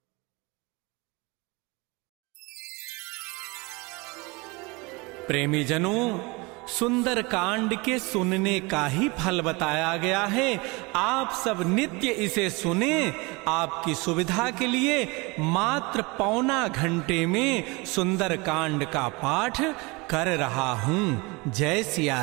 प्रेमी जनों, सुंदर कांड के सुनने का ही फल बताया गया है। आप सब नित्य इसे सुने। आपकी सुविधा के लिए मात्र पौना घंटे में सुंदर कांड का पाठ कर रहा हूं। जय सिया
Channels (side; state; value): left; quieter; 26.0 dB